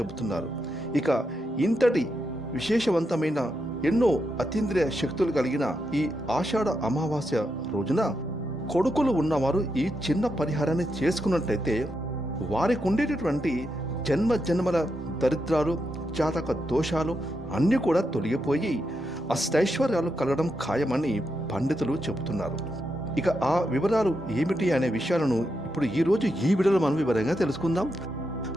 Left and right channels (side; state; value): both; normal; correlation 0.84